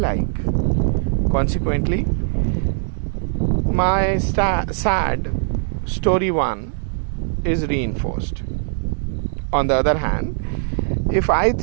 Consequently, my sad story one is reinforced. On the other hand, if I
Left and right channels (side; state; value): left; silent; digital silence